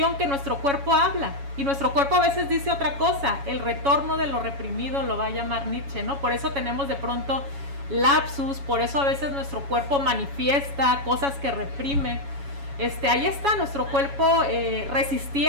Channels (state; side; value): late; left; 7.2 ms